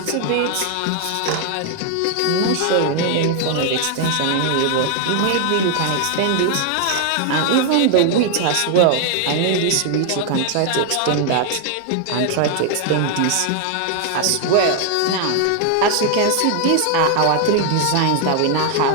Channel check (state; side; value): different; both; correlation 0.00